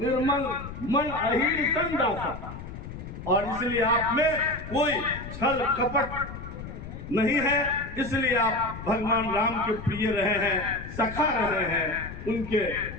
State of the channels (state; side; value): noise; left; rumble, 11 dB below the sound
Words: मन अहिर संदासा। और इसलिए आप में कोई छल कपट नहीं है, इसलिए आप भगवान राम के प्रिय रहे हैं, सखा रहे हैं, उनके